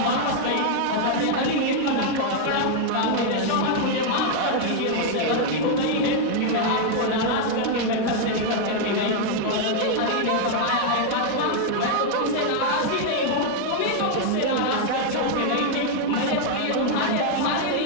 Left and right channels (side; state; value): both; different; correlation 0.00